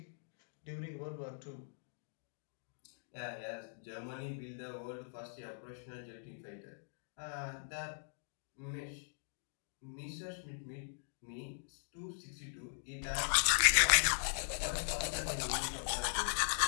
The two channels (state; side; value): silent; right; digital silence